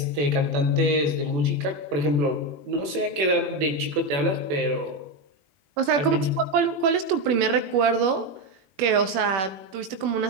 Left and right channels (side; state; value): left; late; 21 ms